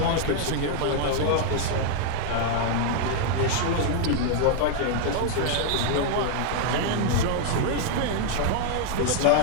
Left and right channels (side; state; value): both; different; correlation 0.00